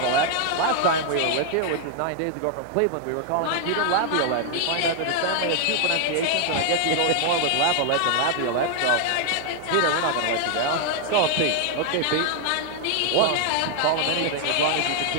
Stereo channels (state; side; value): different; both; correlation 0.00